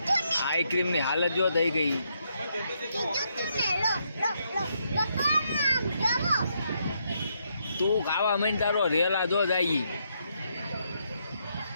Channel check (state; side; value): inverted; both; correlation -0.77